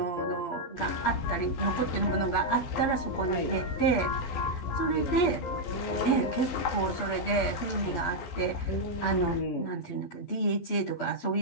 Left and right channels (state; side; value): late; right; 12 ms